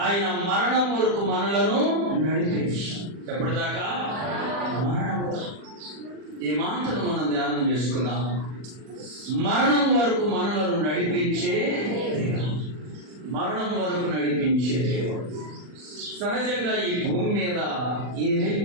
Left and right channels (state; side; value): late; left; 40 ms